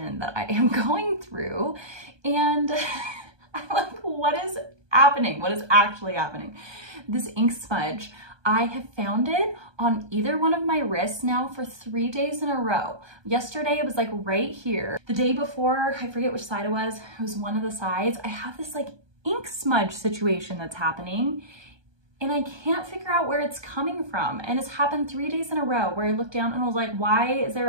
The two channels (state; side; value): late; left; 1.2 ms